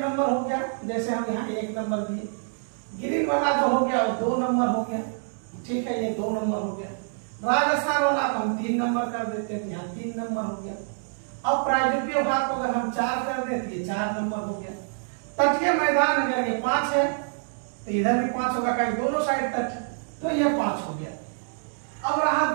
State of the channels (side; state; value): left; silent; digital silence